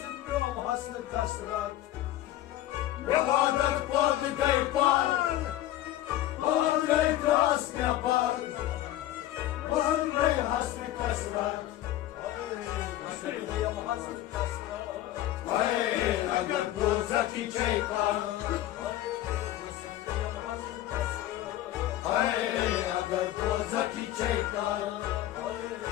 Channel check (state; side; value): quieter; right; 14.1 dB